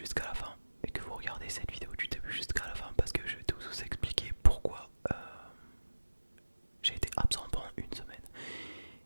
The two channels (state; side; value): inverted; both; correlation -1.00